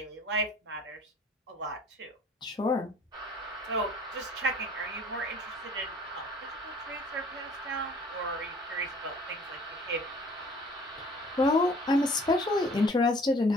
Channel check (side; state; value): both; normal; correlation 0.52